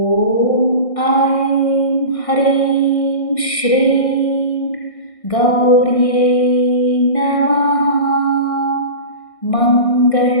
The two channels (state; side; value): late; right; 1.6 ms